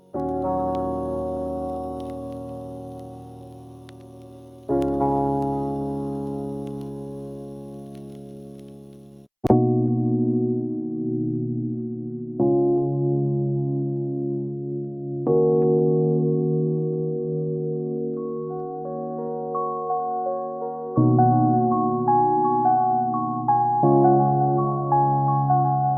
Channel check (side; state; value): both; identical; correlation 1.00